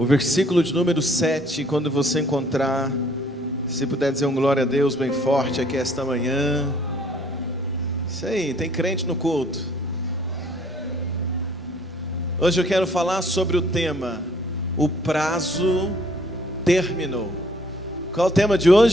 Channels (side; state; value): both; normal; correlation 0.61